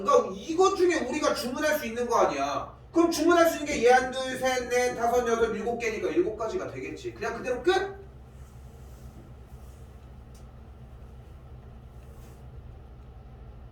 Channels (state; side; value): identical; both; correlation 1.00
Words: 그러니까 이것 중에 우리가 주문할 수 있는 거 아니야. 그럼 주문할 수 있는 게 얘 한, 둘, 셋, 넷, 다섯, 여섯, 7개니까 7가지가 되겠지. 그냥 그대로 끝!